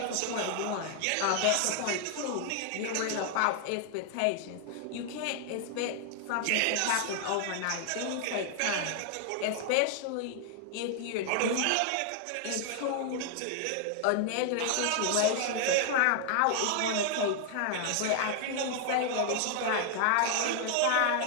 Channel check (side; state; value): both; different; correlation 0.00